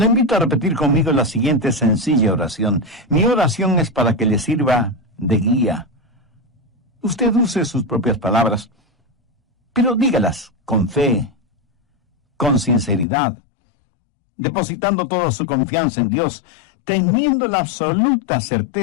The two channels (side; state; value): right; drops out; at 13.1 s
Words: invito a repetir conmigo la siguiente sencilla oración. Mi oración es para que le sirva de guía. Usted use sus propias palabras, pero dígalas con fe, con sinceridad, depositando toda su confianza en Dios, teniendo la absoluta